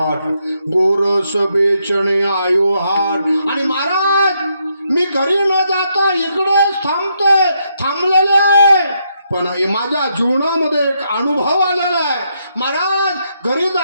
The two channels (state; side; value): inverted; both; correlation -0.78